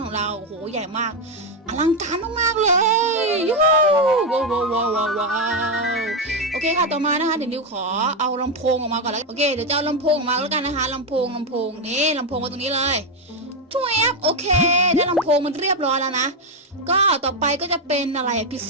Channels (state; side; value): normal; both; correlation 0.06